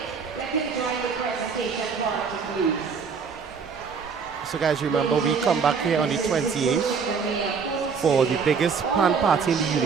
So guys, remember we come back here on the 28th for the biggest pan party in the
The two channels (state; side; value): quieter; left; 5.8 dB